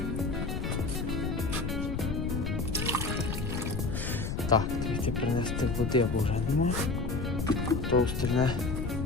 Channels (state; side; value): noise; left; rumble, 2 dB below the sound